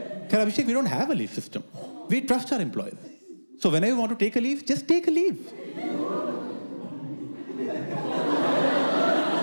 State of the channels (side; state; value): both; inverted; correlation -1.00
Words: क्या Abhishek, we don't have a leave system, we trust our employees, so whenever you want to take a leave just take a leave.